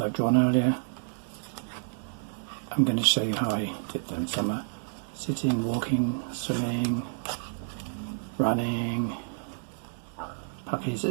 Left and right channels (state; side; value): silent; left; digital silence